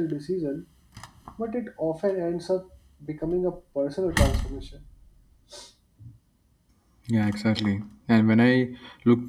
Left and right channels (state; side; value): identical; both; correlation 1.00